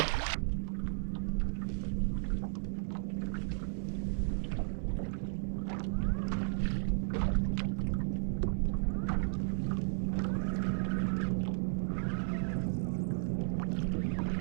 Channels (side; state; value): left; silent; 55 dB below the other